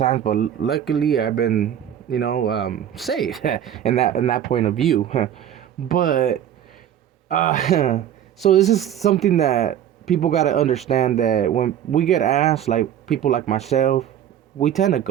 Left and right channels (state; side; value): quieter; left; 10.3 dB